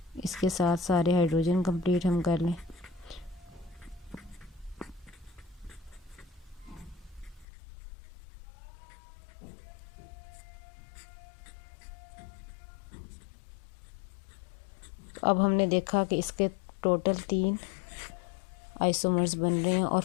इसके साथ सारे हाइड्रोजन कंप्लीट हम कर लें। अब हमने देखा कि इसके टोटल 3 आइसोमर्स बन रहे हैं और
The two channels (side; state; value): right; drops out; at 7.5 s